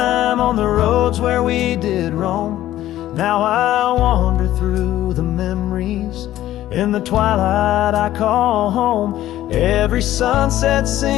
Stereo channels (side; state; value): right; quieter; 13.8 dB